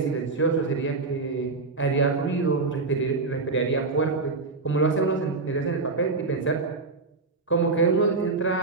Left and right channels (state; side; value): quieter; left; 3.9 dB